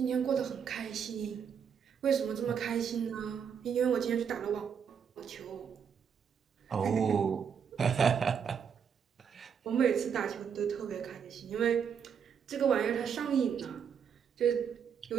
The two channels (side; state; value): left; quieter; 7.3 dB